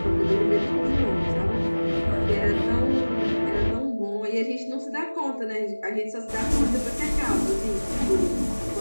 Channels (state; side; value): inverted; both; correlation -1.00